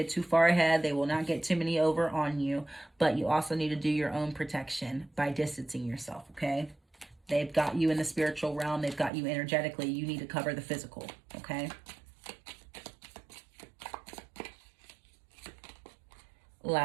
too far ahead. They will not get too many over on you. But you also need to do your own protection by distancing yourself, okay? They've got you in the spiritual realm. They've got you energetically. You need to cover the physical, okay?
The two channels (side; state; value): left; drops out; at 9.1 s